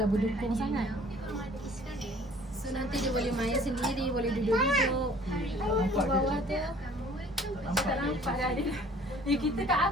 berdukung sangat. So nanti dia boleh main sendiri, boleh duduk-duduk. Di bawah tu. Tak nampak dah dia. Kita kat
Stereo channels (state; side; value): normal; both; correlation 0.52